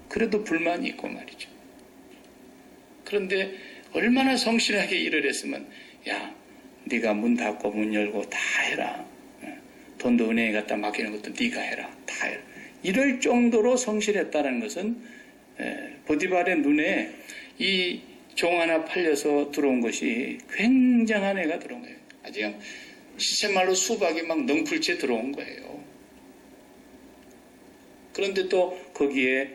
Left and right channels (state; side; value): identical; both; correlation 1.00